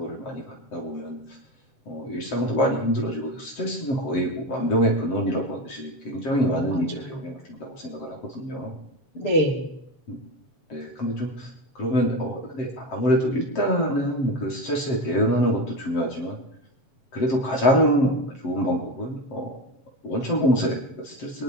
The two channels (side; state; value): right; late; 7.6 ms